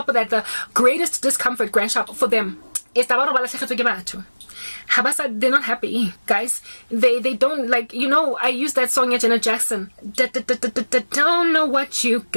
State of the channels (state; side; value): inverted; both; correlation -1.00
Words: of that, the greatest discomfort, grandshop, for them is Habasa, they're not happy, guys. They don't, like, I used that song at Janet Jackson. Don't know what you